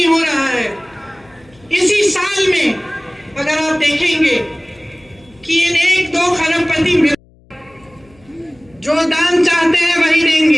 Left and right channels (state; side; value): noise; left; hum, 30 dB below the sound